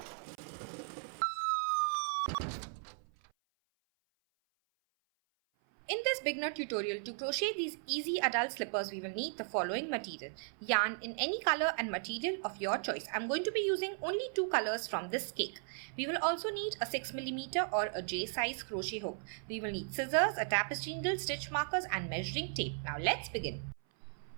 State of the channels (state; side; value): silent; left; 54 dB below the other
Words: In this beginner tutorial, to crochet these easy adult slippers, we will need the following material. Yarn in any color and material of your choice. I'm going to be using only 2 colors from this cake. We will also need a 6mm or a J size crochet hook. We will need scissors, a tapestry needle, stitch markers and measuring tape. Now let's begin.